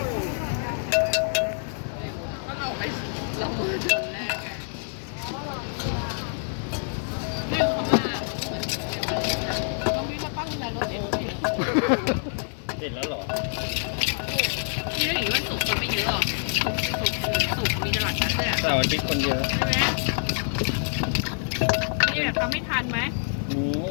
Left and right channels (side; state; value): right; silent; digital silence